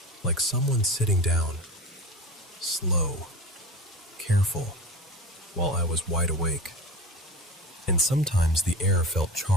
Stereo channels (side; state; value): both; normal; correlation 0.32